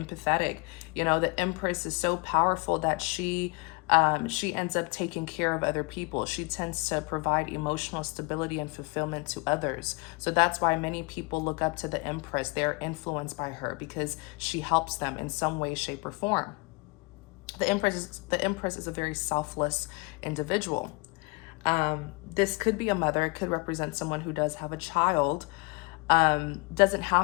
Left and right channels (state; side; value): quieter; right; 28.7 dB